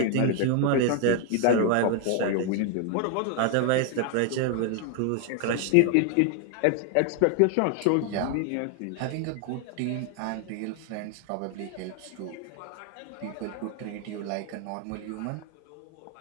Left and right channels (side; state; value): both; different; correlation 0.00